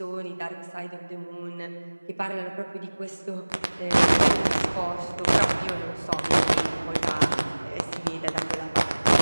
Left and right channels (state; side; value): inverted; both; correlation -1.00